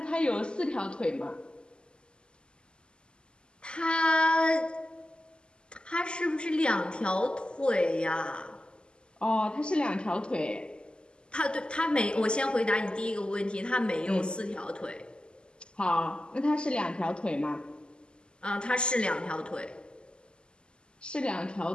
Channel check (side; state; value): right; late; 0.049 ms